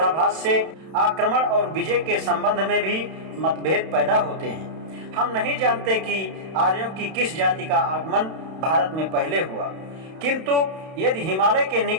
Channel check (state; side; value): late; left; 31 ms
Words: से आक्रमण और विजय के संबंध में भी मतभेद पैदा होते हैं। हम नहीं जानते कि आर्यों की किस जाति का आगमन भारत में पहले हुआ, किंतु यदि हिमालय के